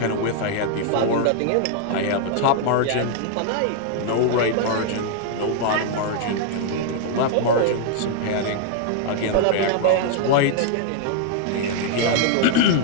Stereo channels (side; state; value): both; different; correlation 0.00